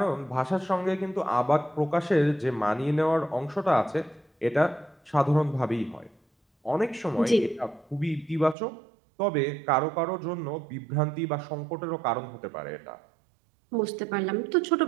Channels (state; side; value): drops out; left; at 8.6 s